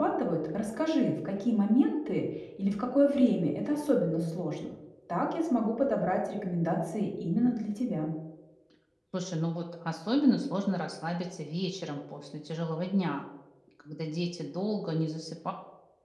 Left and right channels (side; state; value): both; identical; correlation 1.00